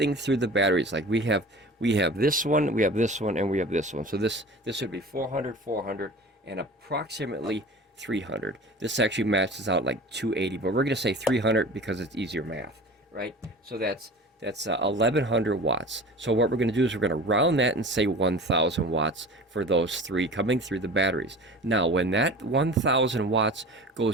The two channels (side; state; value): both; normal; correlation 0.38